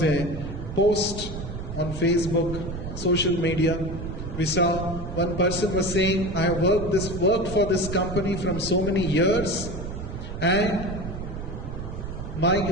a post on Facebook, social media. We saw one person was saying, I have worked for this company from so many years, and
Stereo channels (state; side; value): noise; right; rumble, 7 dB below the sound